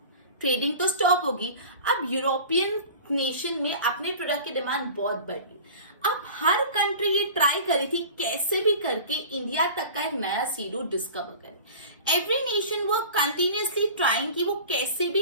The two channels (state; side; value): inverted; both; correlation -0.39